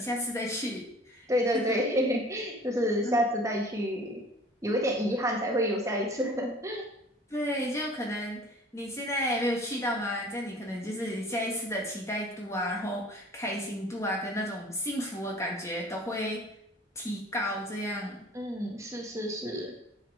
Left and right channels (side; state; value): both; normal; correlation 0.47